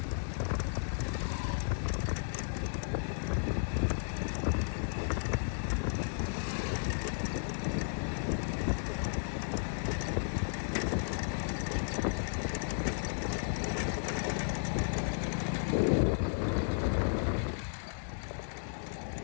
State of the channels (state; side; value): silent; right; digital silence